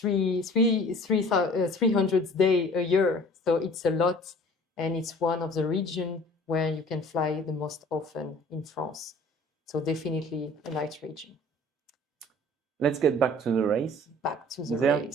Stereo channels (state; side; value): normal; both; correlation 0.48